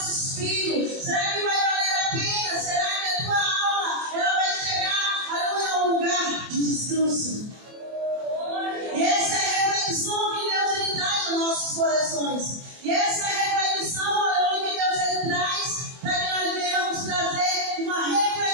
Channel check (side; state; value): left; late; 24 ms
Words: Será que vai valer a pena? Será que a tua alma ela vai chegar, aleluia, a um lugar de descanso? E essa é a reflexão que Deus ele traz nos nossos corações. E essa é a reflexão, aleluia, que Deus ele traz para que nós venhamos trazer uma